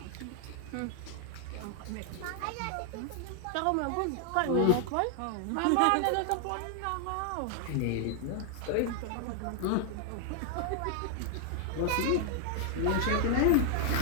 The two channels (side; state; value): both; different; correlation 0.00